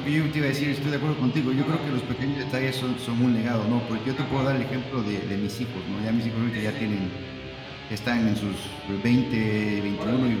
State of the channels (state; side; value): identical; both; correlation 1.00